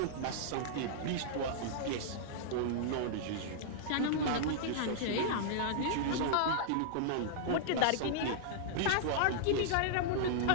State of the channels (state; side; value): different; both; correlation -0.01